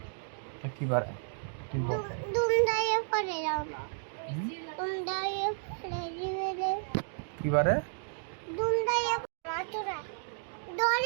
তা কি বারে তুই বল। দুম দাইয়ে পড়ে যাও না দুম দাইয়ে পড়ে দিবে কি বারে? দুম দাইয়ে মাতুরা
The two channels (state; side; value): silent; left; digital silence